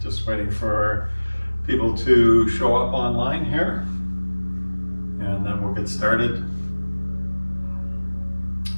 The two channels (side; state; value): both; inverted; correlation -1.00